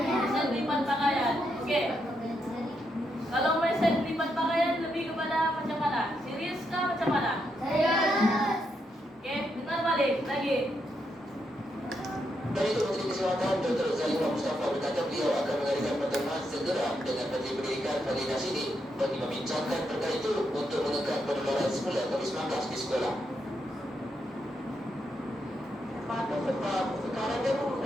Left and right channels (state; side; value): normal; both; correlation 0.81